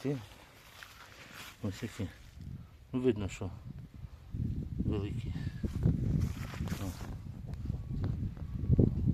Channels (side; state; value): both; identical; correlation 1.00